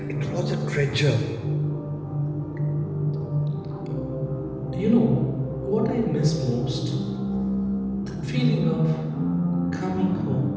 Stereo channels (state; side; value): identical; both; correlation 1.00